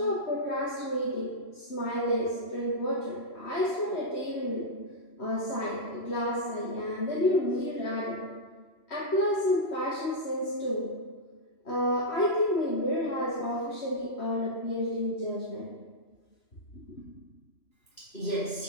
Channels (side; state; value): right; late; 3.0 ms